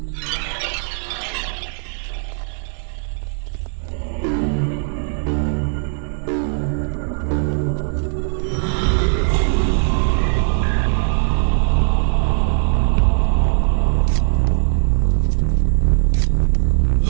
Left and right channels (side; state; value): left; silent; 56 dB below the other